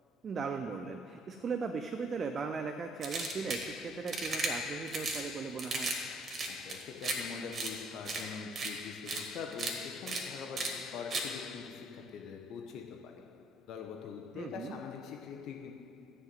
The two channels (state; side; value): normal; both; correlation 0.64